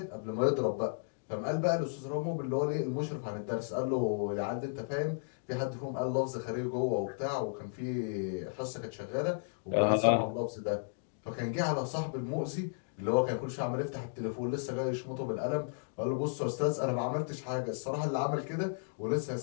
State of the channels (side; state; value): right; silent; digital silence